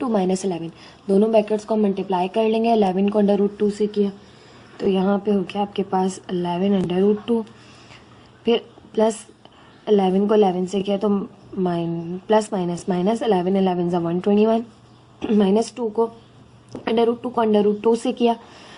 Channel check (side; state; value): both; identical; correlation 1.00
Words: माइनस 11। दोनों ब्रैकेट्स को हम मल्टीप्लाई कर लेंगे, 11 को √2 से किया तो यहाँ पे हो गया आपके पास 11 √2, फिर प्लस 11 को 11 से किया तो प्लस माइनस माइनस 11 11 ज़ा 121, माइनस 2 को √2 से किया